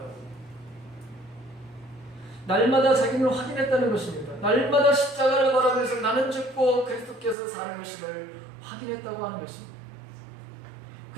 날마다 자기를 확인했다는 것입니다. 날마다 십자가를 바라보면서 나는 죽고 그리스도께서 사는 것임을 확인했다고 하는 것입니다.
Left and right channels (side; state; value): left; drops out; at 7.4 s